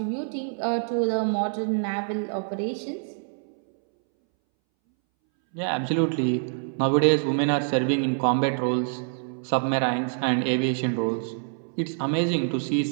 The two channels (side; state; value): left; silent; 61 dB below the other